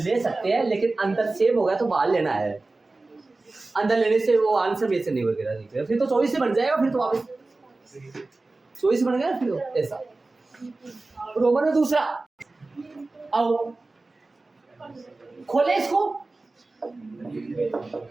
सकते हैं, लेकिन अंदर सेम हो गया तो बाहर लेना है, अंदर लेने से वो आंसर में से नहीं वगैरह, फिर तो 24 से बन जाएगा, फिर तो वापस 24 बन गया, फिर तो ऐसा। रोमन में दूसरा, आओ खोले इसको,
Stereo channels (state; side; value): quieter; left; 3.3 dB